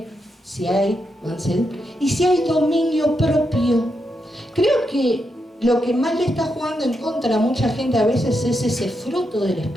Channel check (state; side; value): normal; both; correlation 0.84